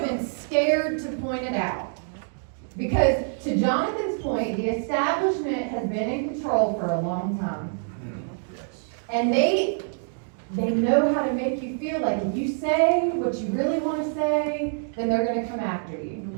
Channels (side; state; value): left; silent; 61 dB below the other